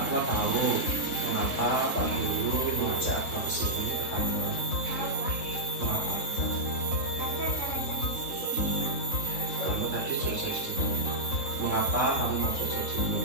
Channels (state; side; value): late; right; 3.7 ms